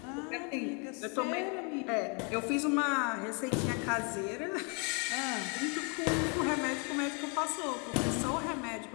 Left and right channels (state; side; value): quieter; right; 35.4 dB